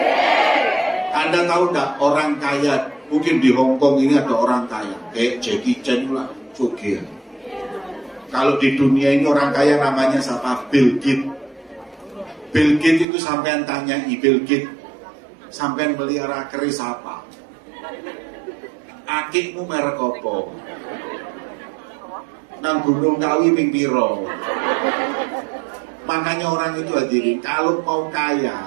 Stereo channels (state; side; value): drops out; left; at 13.1 s